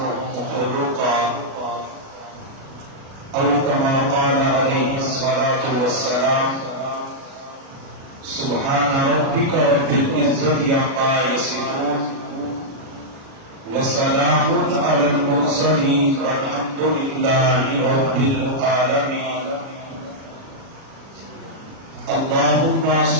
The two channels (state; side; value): late; left; 37 ms